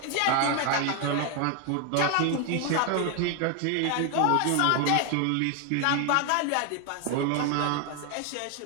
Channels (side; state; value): both; different; correlation 0.01